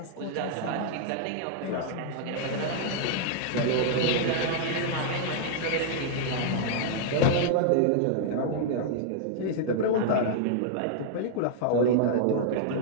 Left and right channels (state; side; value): different; both; correlation -0.01